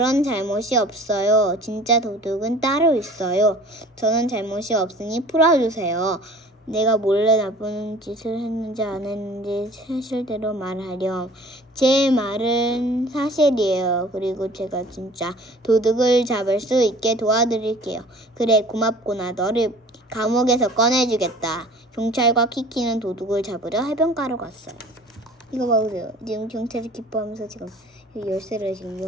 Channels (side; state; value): both; normal; correlation 0.47